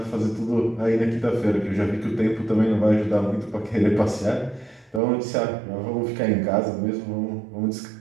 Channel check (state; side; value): drops out; left; at 5.0 s